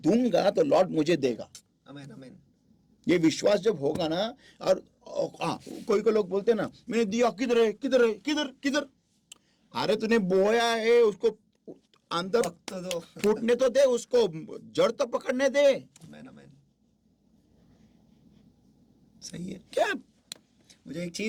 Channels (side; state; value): both; identical; correlation 1.00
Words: तो लॉर्ड मुझे देगा. आमीन, आमीन. ये विश्वास जब होगा ना, और हाँ कोई लोग बोलते हैं ना, मैंने दिया, किधर है किधर है किधर किधर. अरे तूने बोया है, उसको अंदर तो दो. फूटने तो दे, उसको जड़ तो पकड़ने दे. आमीन, आमीन. सही है. क्या मुझे एक